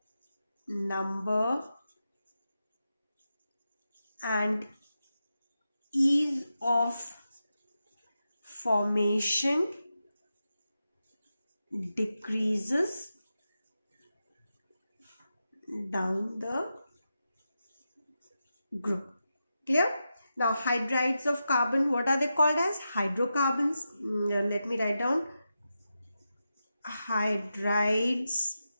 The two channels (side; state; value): both; inverted; correlation -0.90